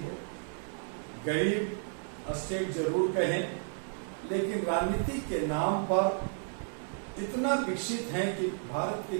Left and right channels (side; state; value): left; silent; 56 dB below the other